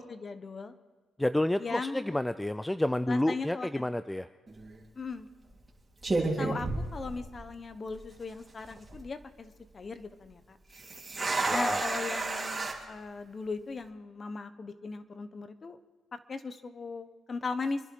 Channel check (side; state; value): both; normal; correlation 0.93